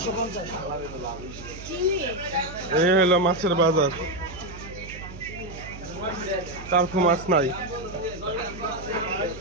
এই হলো মাছের বাজার। তারপর মাছ নাই,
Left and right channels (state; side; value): noise; right; hum, 13 dB below the sound